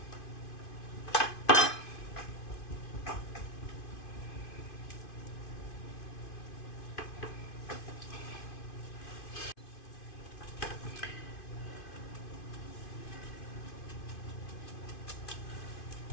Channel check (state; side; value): late; right; 2.5 ms